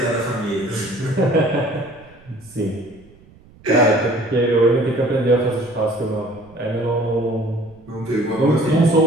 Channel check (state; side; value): noise; right; rumble, 26 dB below the sound